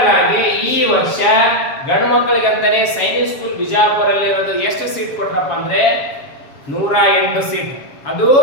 ಆಗಿ ಈ ವರ್ಷ ಗಂಡು ಮಕ್ಕಳಿಗೆ ಅಂತಾನೆ ಸೈನಿಕ್ ಸ್ಕೂಲ್ ಬಿಜಾಪುರಲ್ಲಿ ಇರೋದು ಎಷ್ಟು ಸೀಟ್ ಕೊಟ್ರಪ್ಪ ಅಂದ್ರೆ 108 ಸೀಟ್, ಅದು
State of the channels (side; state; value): right; late; 7.4 ms